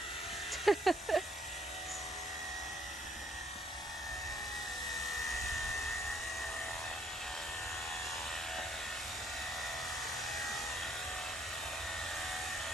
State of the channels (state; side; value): normal; both; correlation 0.66